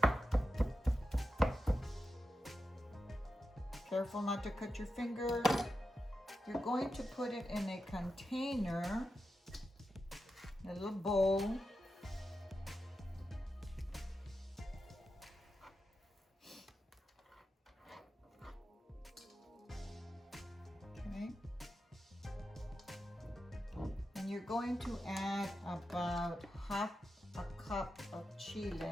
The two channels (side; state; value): both; normal; correlation 0.90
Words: Careful not to cut your fingers. You're going to put it in a container, a little bowl. Okay. And you're going to add about half a cup of